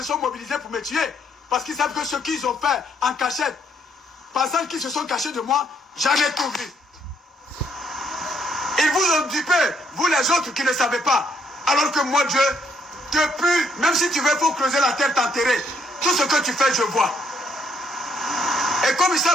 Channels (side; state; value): both; normal; correlation 0.70